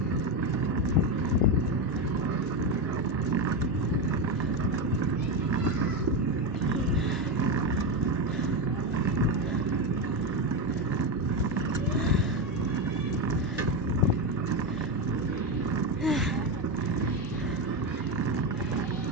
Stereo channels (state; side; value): normal; both; correlation 0.12